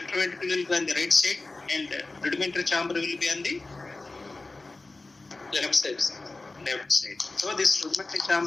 ventricle will be on the right side and rudimentary chamber will be on the Left side, sir. left side. So this rudimentary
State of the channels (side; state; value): right; quieter; 3.3 dB